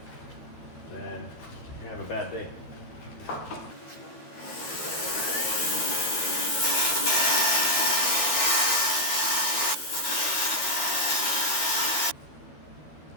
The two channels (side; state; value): right; late; 13 ms